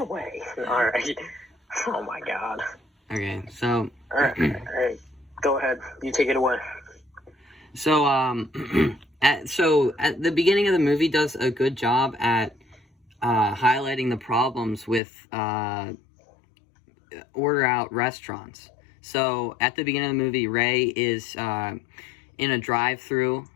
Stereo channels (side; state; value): right; drops out; at 15.0 s